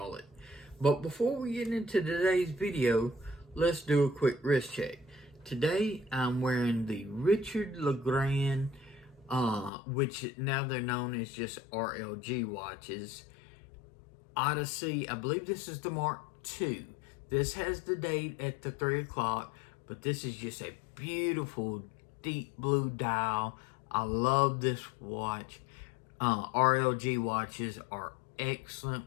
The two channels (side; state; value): right; drops out; at 9.7 s